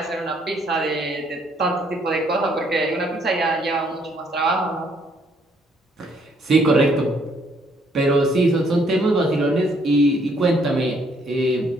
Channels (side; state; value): both; normal; correlation 0.67